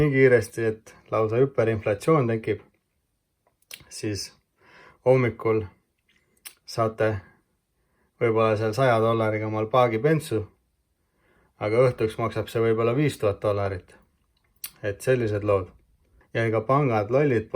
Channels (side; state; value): both; identical; correlation 1.00